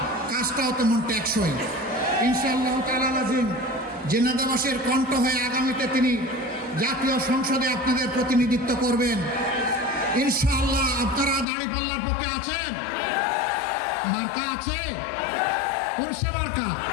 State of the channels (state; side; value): drops out; right; at 11.5 s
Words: কাজটাও তেমন টেকসই। ইনশাআল্লাহ তাআলা আজিম ঝিনাইদহবাসীর কণ্ঠ হয়ে আগামীতে তিনি জাতীয় সংসদে আপনাদের প্রতিনিধিত্ব করবেন। ইনশাআল্লাহ আপনারা দাড়িপাল্লার পক্ষে আছেন? মার্কা আছে? কোন সে মার্কা?